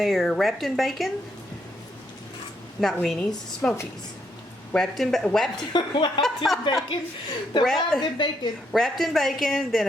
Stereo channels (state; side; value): normal; both; correlation 0.76